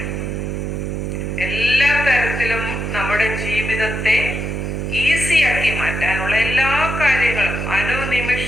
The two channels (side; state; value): right; noise; hum, 3 dB below the sound